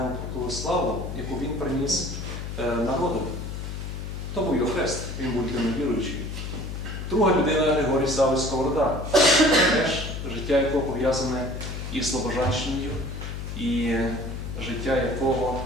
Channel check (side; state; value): left; noise; hum, 6 dB below the sound